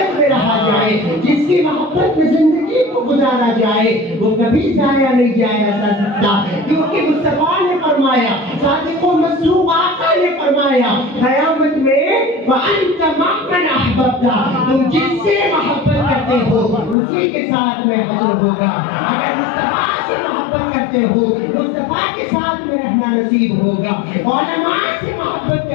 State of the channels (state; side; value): drops out; right; at 16.9 s